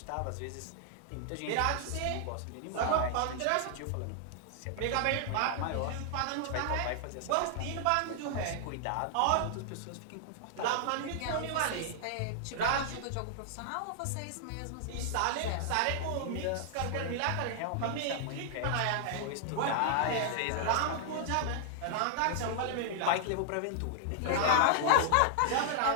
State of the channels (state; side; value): different; both; correlation -0.01